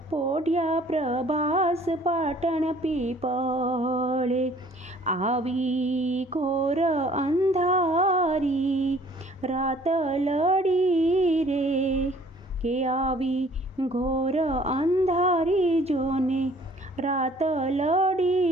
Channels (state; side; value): normal; both; correlation 0.56